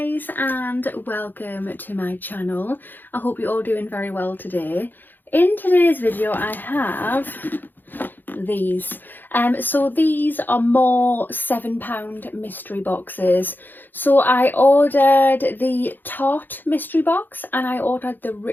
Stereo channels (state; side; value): late; right; 0.090 ms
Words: and welcome to my channel. I hope you're all doing very well today. In today's video I have these. So these are more £7 mystery boxes. So I ordered the Tarte mystery box and I ordered the